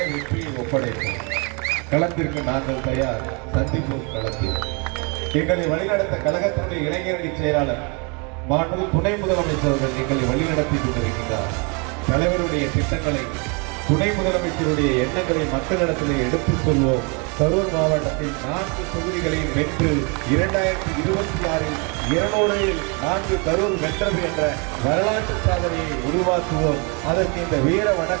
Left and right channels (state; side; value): quieter; left; 33.1 dB